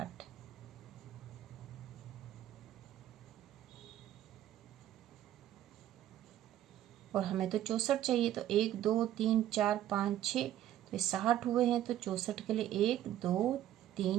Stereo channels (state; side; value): quieter; left; 12.4 dB